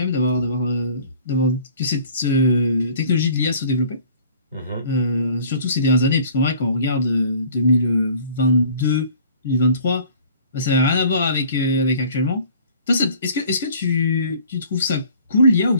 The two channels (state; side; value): inverted; both; correlation -0.51